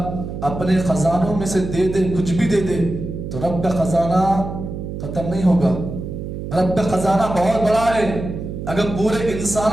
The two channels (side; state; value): right; noise; hum, 7 dB below the sound